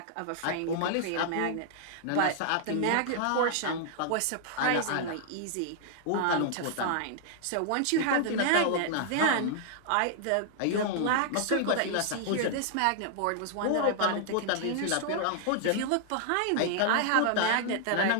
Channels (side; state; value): both; different; correlation -0.01